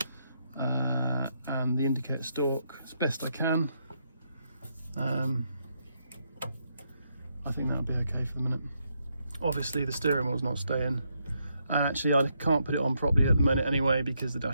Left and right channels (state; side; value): inverted; both; correlation -0.78